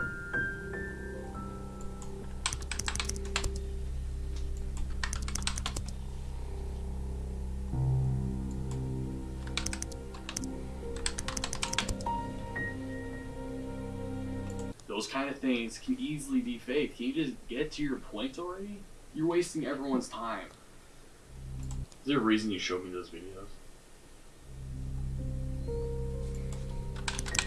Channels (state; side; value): identical; both; correlation 1.00